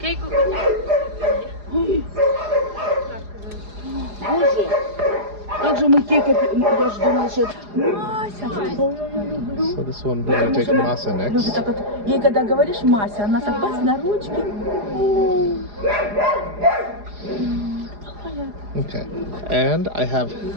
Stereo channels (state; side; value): late; left; 4.9 ms